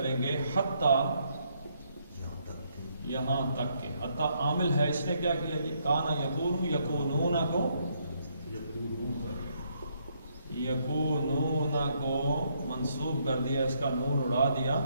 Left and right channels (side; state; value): both; inverted; correlation -0.73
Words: گے حتی یہاں تک کہ، حتی عامل ہے، اس نے کیا کیا جی، کانا یکون یکونون کو، یکونون کو منصوب کر دیا، اس کا نون اڑا دیا،